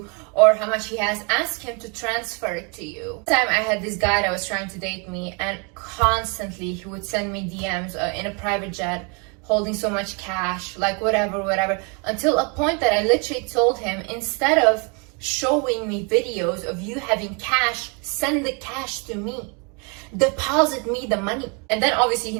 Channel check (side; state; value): left; quieter; 34.0 dB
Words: or how much he has, ask him to transfer it to you. One time I had this guy that was trying to date me, and constantly he would send me DMs in a private jet, holding so much cash, like whatever, until a point that I literally told him, instead of showing me videos of you having cash, send the cash to me. Deposit me the money. And then obviously he